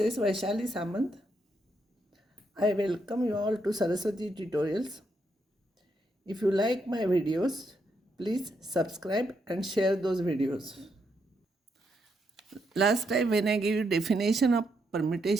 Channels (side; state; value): both; normal; correlation 0.79